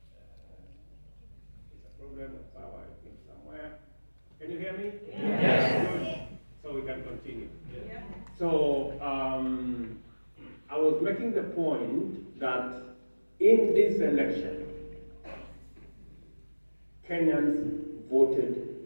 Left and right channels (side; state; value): both; inverted; correlation -1.00